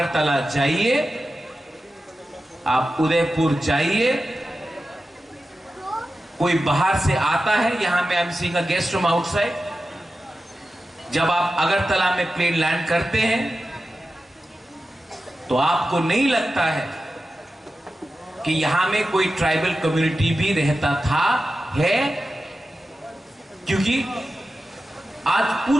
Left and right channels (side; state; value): both; normal; correlation 0.93